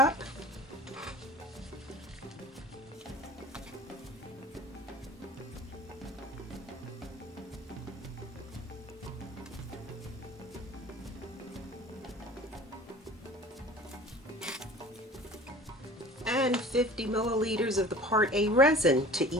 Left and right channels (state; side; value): normal; both; correlation 0.43